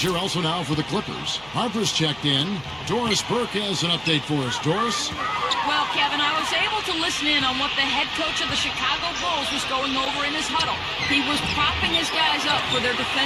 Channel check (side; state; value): right; noise; hum, 23 dB below the sound